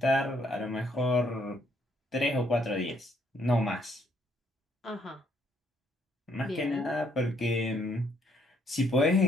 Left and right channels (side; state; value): both; normal; correlation 0.70